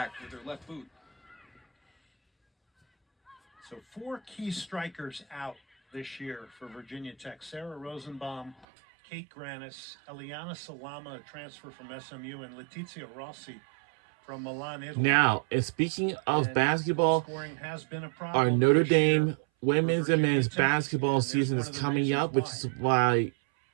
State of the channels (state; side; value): drops out; left; at 8.7 s